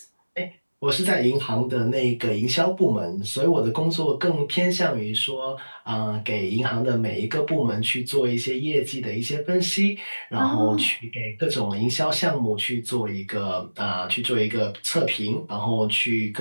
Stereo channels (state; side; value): inverted; both; correlation -1.00